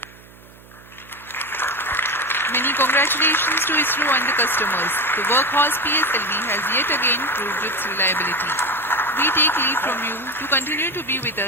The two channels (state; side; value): noise; right; hum, 23 dB below the sound